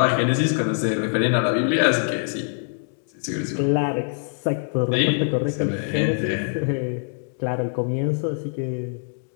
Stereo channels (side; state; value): right; silent; digital silence